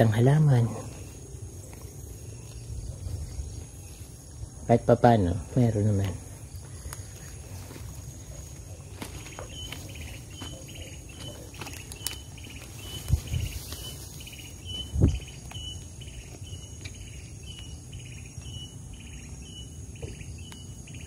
halaman. Kahit pa paano, meron naman.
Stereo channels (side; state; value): both; identical; correlation 1.00